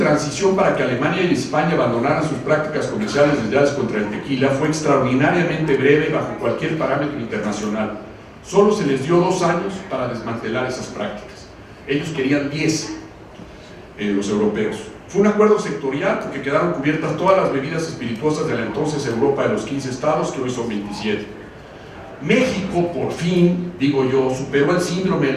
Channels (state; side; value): identical; both; correlation 1.00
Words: para que Alemania y España abandonaran sus prácticas comerciales desleales contra el tequila fue extraordinariamente breve bajo cualquier parámetro internacional. Solo se les dio 2 años para desmantelar esas prácticas. Ellos querían 10, los europeos. Fue un acuerdo sectorial porque quedaron cubiertas todas las bebidas espirituosas de la entonces Europa de los 15 estados, que hoy son 27. México, por fin, digo yo, superó el síndrome